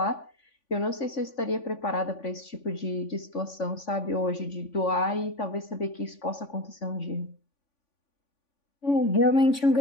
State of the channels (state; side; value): late; right; 3.5 ms